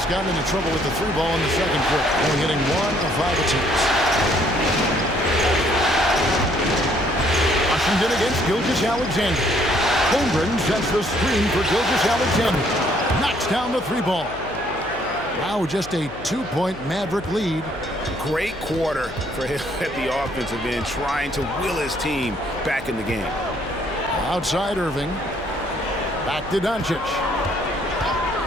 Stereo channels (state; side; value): noise; left; hum, 17 dB below the sound